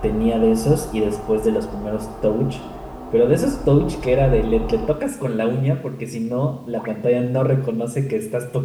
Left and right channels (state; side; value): identical; both; correlation 1.00